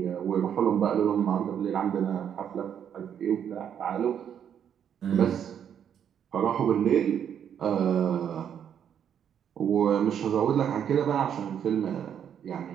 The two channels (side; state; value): left; quieter; 8.8 dB